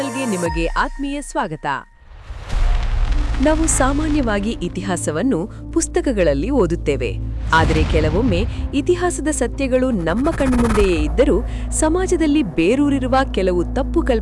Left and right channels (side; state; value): both; identical; correlation 1.00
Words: ನಿಮಗೆ ಆತ್ಮೀಯ ಸ್ವಾಗತ. ನಾವು ಸಾಮಾನ್ಯವಾಗಿ ಇತಿಹಾಸವನ್ನು ಪುಸ್ತಕಗಳಲ್ಲಿ ಓದುತ್ತೇವೆ. ಆದರೆ ಕೆಲವೊಮ್ಮೆ ಇತಿಹಾಸದ ಸತ್ಯಗಳು ನಮ್ಮ ಕಣ್ಮುಂದೆಯೇ ಇದ್ದರೂ ಸಮಾಜದಲ್ಲಿ ಬೇರೂರಿರುವ ಕೆಲವು ತಪ್ಪು